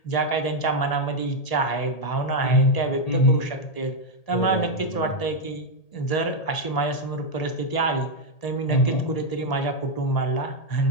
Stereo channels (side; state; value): right; late; 1.8 ms